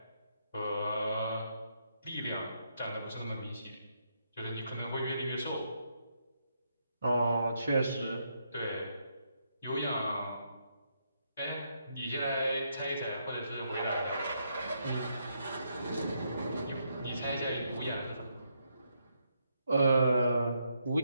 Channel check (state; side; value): inverted; both; correlation -0.77